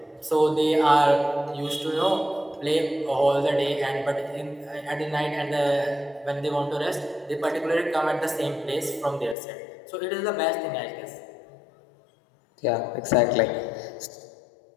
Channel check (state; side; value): drops out; right; at 9.3 s